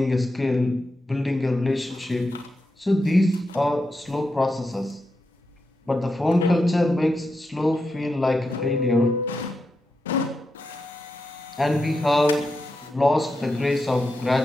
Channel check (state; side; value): normal; both; correlation 0.87